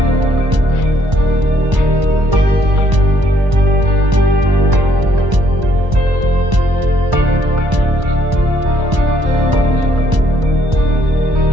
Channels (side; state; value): left; late; 1.0 ms